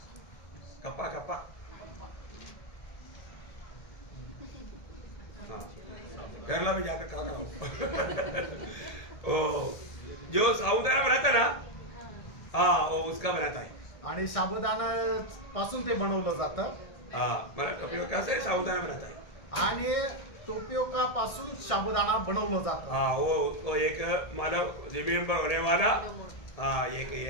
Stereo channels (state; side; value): late; right; 1.8 ms